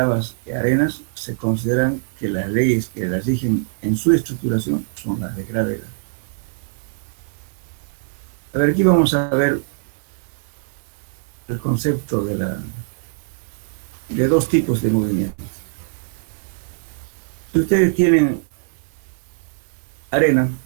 y arenas se consideran que las leyes que las rigen en su estructuración son las de gravedad. A ver, aquí vamos a ver el concepto de dos tipos de movimientos. Si ustedes tienen arena,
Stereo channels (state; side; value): silent; left; digital silence